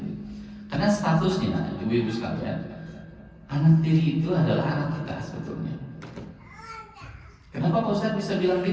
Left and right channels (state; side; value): identical; both; correlation 1.00